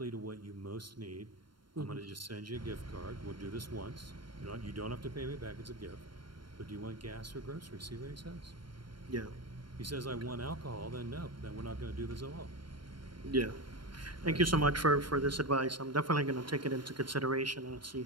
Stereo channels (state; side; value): late; left; 0.72 ms